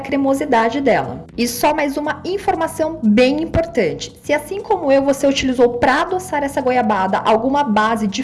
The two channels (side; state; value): both; identical; correlation 1.00